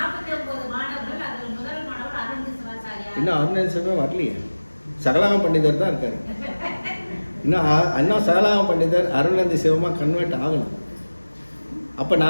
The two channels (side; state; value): both; inverted; correlation -1.00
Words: இன்னும் அருணேசமே வரலையே. சகலாம பண்டிதர் தான் இருக்காரு. இன்னும் அண்ணா சகலாம பண்டிதர் அருள்நந்தி சிவமா கன்வெர்ட் ஆகணும். அப்ப